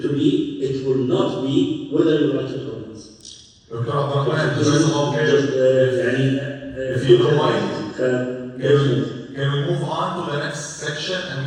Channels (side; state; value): both; identical; correlation 1.00